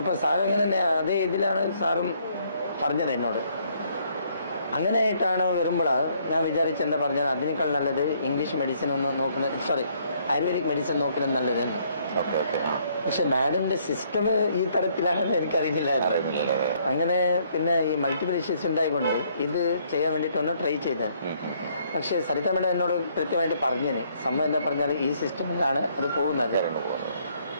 സാർ ഇങ്ങനെ തന്നെ അതേ ഇതിലാണ് സാറും പറഞ്ഞത് എന്നോട്. അങ്ങനെയായിട്ടാണ് വരുമ്പോഴാണ് ഞാൻ വിചാരിച്ചെന്താ പറഞ്ഞത്, അതിനേക്കാൾ നല്ലത് ഇംഗ്ലീഷ് മെഡിസിൻ ഒന്ന് നോക്കുന്നത്, ആയുർവേദിക് മെഡിസിൻ നോക്കുന്നത് നല്ലതെന്ന്. പക്ഷെ മാഡത്തിന്റെ സിസ്റ്റം ഈ തരത്തിലാണെന്ന് എനിക്കറിയില്ലായിരുന്നു. അങ്ങനെ ഈ മൾട്ടിപ്പിൾ ഇഷ്യൂസ് ഉണ്ടായിക്കൊണ്ട് ഇത് ചെയ്യാൻ വേണ്ടിയിട്ട് ഒന്ന് ട്രൈ ചെയ്തത്. പക്ഷെ സരിത മേഡം എന്നോട് കൃത്യമായിട്ട് പറഞ്ഞിന്, സംഭവം എന്താ പറഞ്ഞാൽ ഈ സിസ്റ്റമിലാണ് അത് പോകുന്നത്,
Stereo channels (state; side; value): inverted; both; correlation -0.67